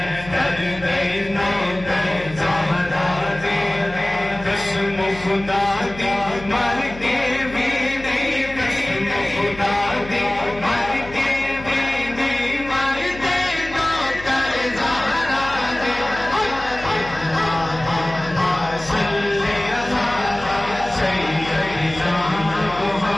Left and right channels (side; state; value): left; noise; hum, 15 dB below the sound